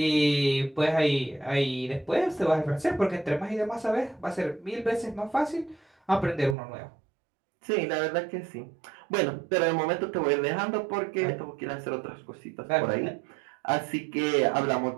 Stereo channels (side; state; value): left; drops out; at 6.6 s